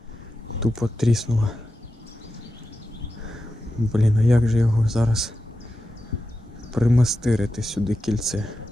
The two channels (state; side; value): normal; both; correlation 0.90